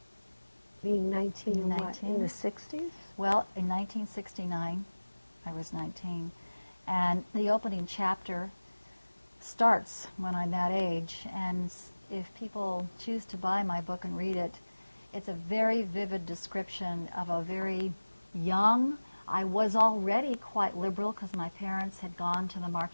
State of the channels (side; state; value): both; inverted; correlation -1.00